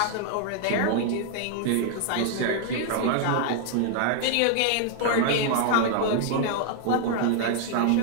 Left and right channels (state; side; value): different; both; correlation 0.00